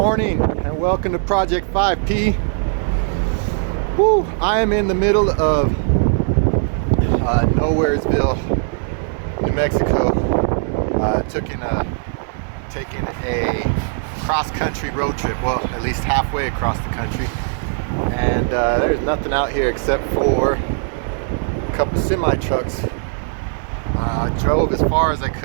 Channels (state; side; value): silent; left; 60 dB below the other